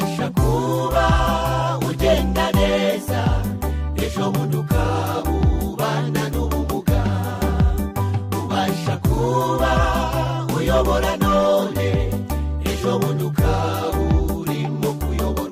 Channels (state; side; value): identical; both; correlation 1.00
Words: kuba ugenda neza, ejo bundi ukaba ubana n'ubumuga. Ubasha kuba uyobora none, ejo bundi ukaba urimo